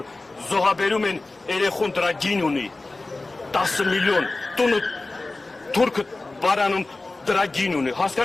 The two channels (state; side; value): quieter; right; 3.2 dB